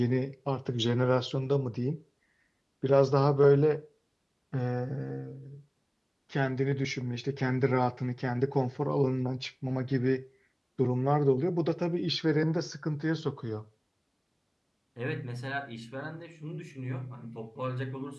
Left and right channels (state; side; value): identical; both; correlation 1.00